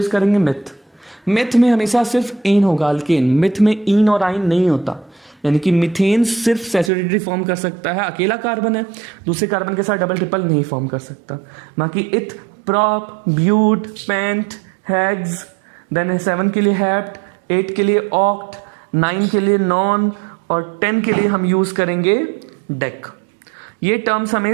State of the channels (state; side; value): drops out; left; at 6.9 s